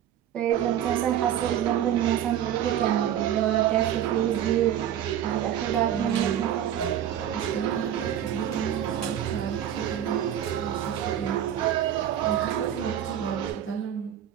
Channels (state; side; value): quieter; left; 10.4 dB